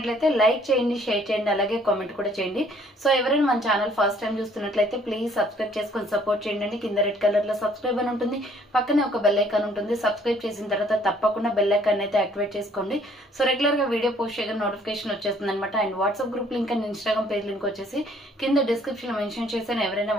లైక్ చేయండి, షేర్ చేయండి, అలాగే కామెంట్ కూడా చేయండి. సో ఎవరైనా మన ఛానల్ ఫస్ట్ టైం చూస్తున్నట్లయితే ప్లీజ్ సబ్స్క్రైబ్ చేసుకొని సపోర్ట్ చేయండి. కింద రెడ్ కలర్ లో సబ్స్క్రైబ్ అని ఉంటుంది, పక్కనే ఒక బెల్ ఐకాన్ ఉంటుంది. సబ్స్క్రైబ్ చేసిన తర్వాత తప్పకుండా బెల్ ఐకాన్ అయితే యాక్టివేట్ చేసుకోండి. సో రెగ్యులర్ గా వీడియో పోస్ట్ చేయగా నోటిఫికేషన్ వచ్చేస్తుంది అనమాట. And WhatsApp group link and Instagram page link వచ్చేసి కింద డిస్క్రిప్షన్ లో మెన్షన్ చేశాను. ఎవరైనా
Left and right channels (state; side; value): normal; both; correlation 0.61